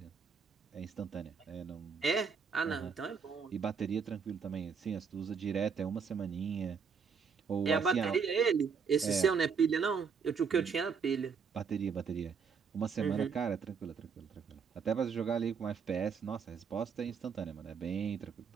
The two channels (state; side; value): quieter; left; 6.0 dB